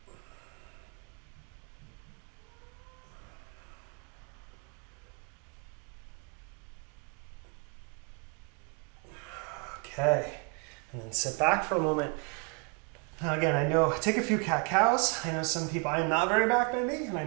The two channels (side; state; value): left; quieter; 35.7 dB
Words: Okay, and then sit back for a moment. Now again, I know, take a few cat-cows. I know some people, I am not very back-bendy, and I